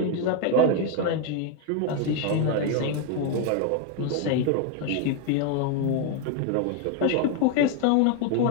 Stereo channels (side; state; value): both; different; correlation 0.01